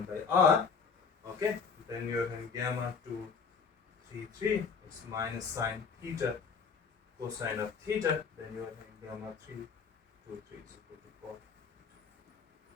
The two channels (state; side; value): quieter; right; 5.7 dB